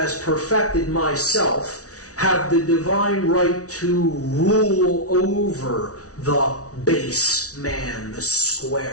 perfected myself, have the divine right to rule over the base man, the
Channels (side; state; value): right; late; 0.67 ms